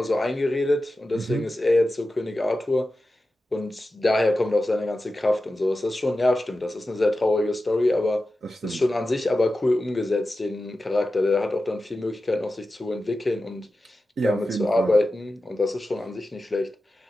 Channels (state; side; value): normal; both; correlation 0.93